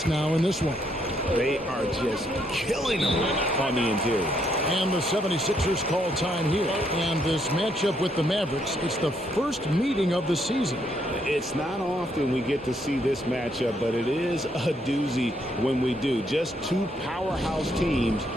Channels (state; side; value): normal; both; correlation 0.73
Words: now in this one. They are just killing them on the interior. And the 76ers call time here. And this matchup with the Mavericks, it's the first meeting of the season. It's not often we get to see this matchup, but it is a doozy when we do. Just two powerhouse teams